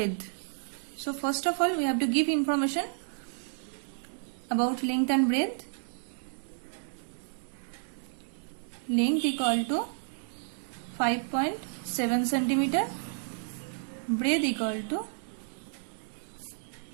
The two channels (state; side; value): silent; left; digital silence